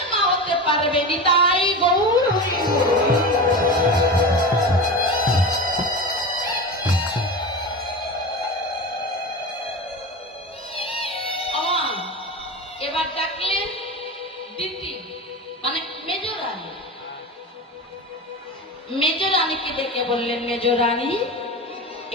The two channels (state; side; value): normal; both; correlation 0.26